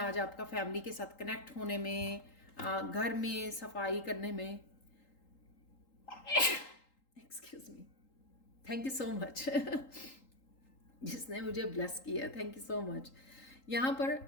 आपका फैमिली के साथ कनेक्ट होने में, घर में सफाई करने में। Excuse me, thank you so much जिसने मुझे ब्लेस किया, थैंक यू सो मच। यहाँ पर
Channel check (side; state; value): right; late; 3.8 ms